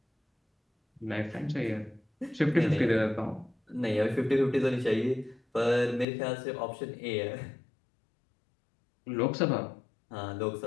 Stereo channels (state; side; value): drops out; right; at 6.1 s